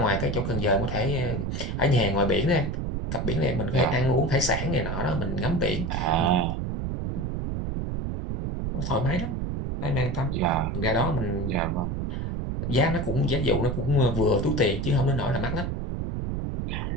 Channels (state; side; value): noise; right; rumble, 2 dB below the sound